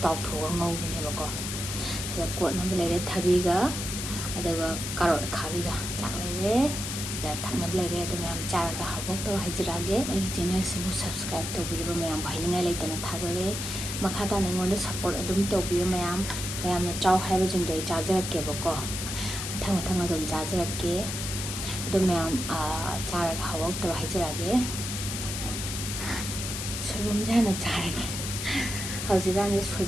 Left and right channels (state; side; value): noise; left; hiss, 4 dB below the sound